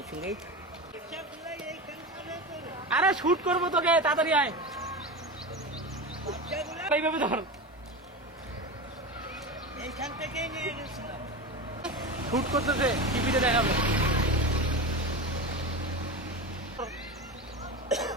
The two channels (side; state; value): both; normal; correlation 0.24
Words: সঙ্গেই। আরে শুট করবো তোকে, তাড়াতাড়ি আয়। এইভাবে ধর, এইখান থেকেই নিয়ে গেছিলাম। শুট করতেছে, টিভিতে দেখাবে।